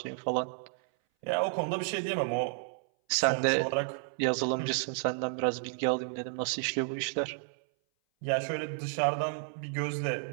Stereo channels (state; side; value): silent; left; 57 dB below the other